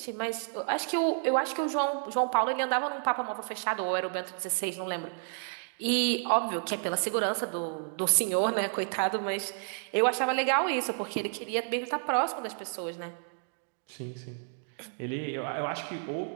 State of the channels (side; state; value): left; silent; 57 dB below the other